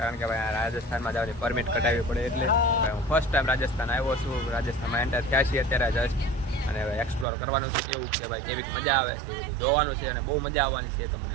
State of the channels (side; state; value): left; drops out; at 7.2 s